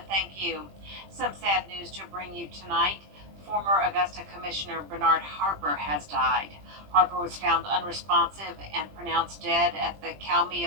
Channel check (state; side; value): late; left; 20 ms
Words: thank you. Some sad news to bring you tonight. Former Augusta Commissioner Bernard Harper has died. Harper was found unresponsive and pronounced dead at the